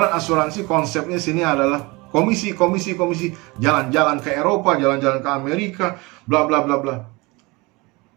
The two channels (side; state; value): left; quieter; 24.6 dB